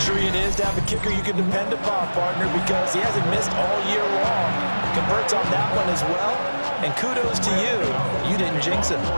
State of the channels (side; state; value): both; inverted; correlation -1.00